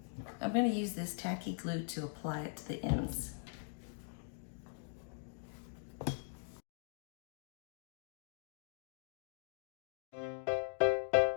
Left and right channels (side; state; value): right; silent; digital silence